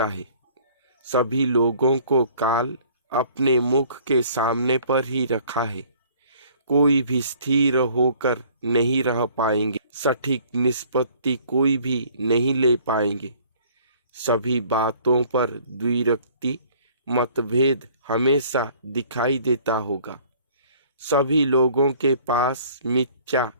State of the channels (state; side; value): inverted; both; correlation -0.54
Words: है। सभी लोगों को काल अपने मुख के सामने पर ही रखा है। कोई भी स्थिर होकर नहीं रह पाएंगे, सटीक निष्पत्ति कोई भी नहीं ले पाएंगे। सभी बातों पर द्विरक्ति मतभेद हमेशा दिखाई देता होगा। सभी लोगों के पास मिथ्या